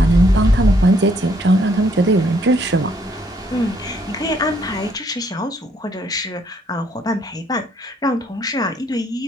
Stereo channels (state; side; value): normal; both; correlation 0.69